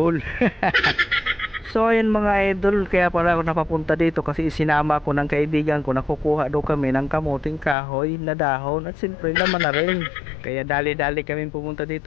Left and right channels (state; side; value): drops out; right; at 7.8 s